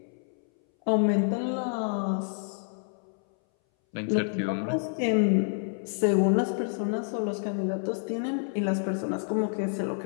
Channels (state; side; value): silent; right; 59 dB below the other